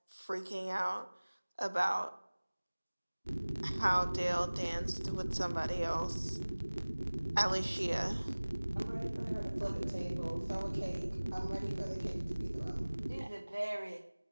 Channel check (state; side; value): inverted; both; correlation -1.00